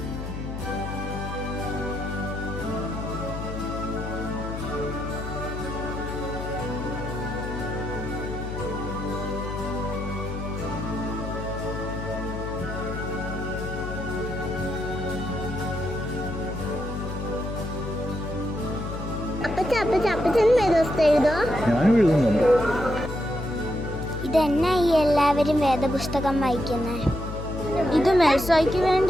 ഇതെന്നാ ഈ എല്ലാവരും വേദപുസ്തകം വായിക്കുന്നത്? ഇത് മെൽസോയ്ക്ക്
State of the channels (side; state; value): left; noise; hum, 7 dB below the sound